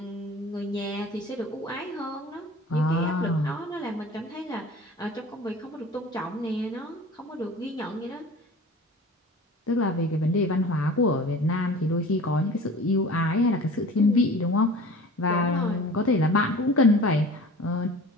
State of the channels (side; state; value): both; normal; correlation 0.41